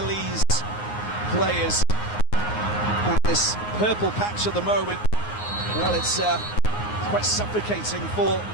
players. And this purple patch at the moment, well, it's quite suffocating for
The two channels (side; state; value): right; late; 9.6 ms